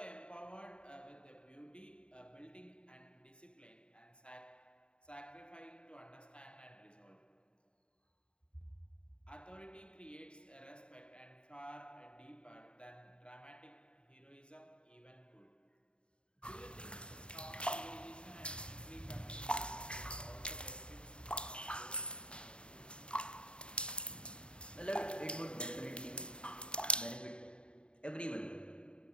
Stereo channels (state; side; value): late; right; 0.053 ms